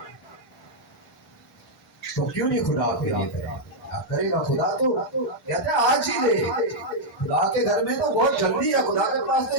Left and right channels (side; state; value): both; normal; correlation -0.03